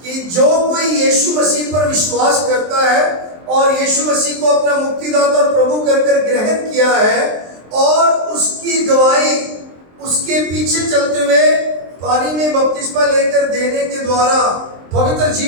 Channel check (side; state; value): left; late; 23 ms